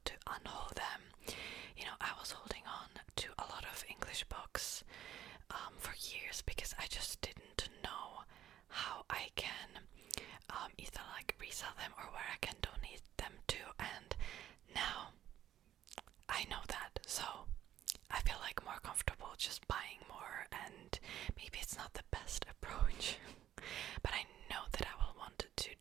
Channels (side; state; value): left; quieter; 11.6 dB